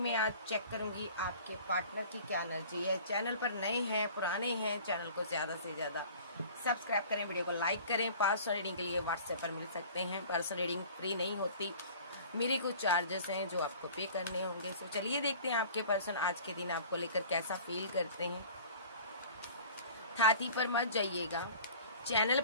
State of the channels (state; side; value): inverted; both; correlation -0.45